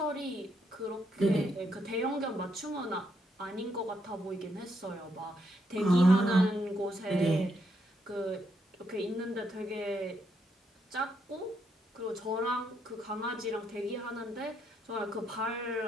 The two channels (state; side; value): normal; both; correlation 0.77